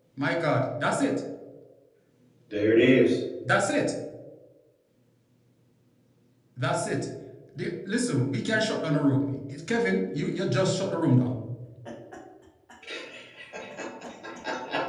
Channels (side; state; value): both; identical; correlation 1.00